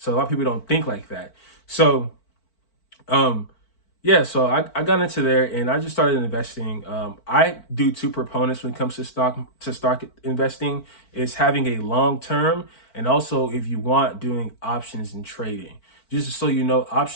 a lot of people don't think like that. So yeah, so I got into there and I just started investing. I do two proponents when it comes to stock investing, is having a long term, and also if you want, doing options and trading. Just so you know,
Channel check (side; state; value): right; late; 4.5 ms